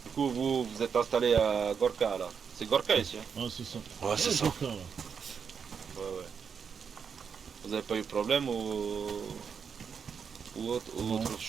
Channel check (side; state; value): left; quieter; 6.5 dB